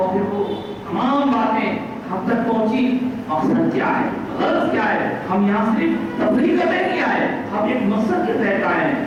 پھر وہ تمام باتیں ہم تک پہنچی. مقصد کیا ہے, غرض کیا ہے؟ ہم یہاں صرف تفریح کرنے نہیں آئے, ہم ایک مقصد کے تحت آئے ہیں.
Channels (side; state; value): both; identical; correlation 1.00